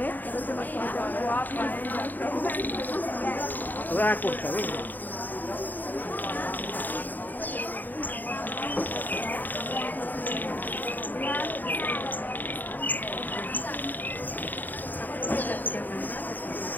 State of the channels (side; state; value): right; late; 0.087 ms